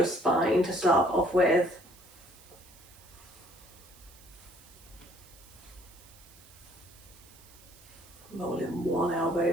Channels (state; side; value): noise; right; hiss, 23 dB below the sound